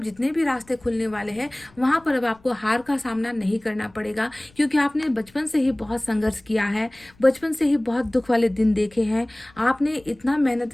जितने भी रास्ते खुलने वाले हैं वहाँ पर अब आपको हार का सामना नहीं करना पड़ेगा, क्योंकि आपने बचपन से ही बहुत संघर्ष किया है, बचपन से ही बहुत दुख वाले दिन देखे हैं, आपने इतना मेहनत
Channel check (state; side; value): noise; left; rumble, 29 dB below the sound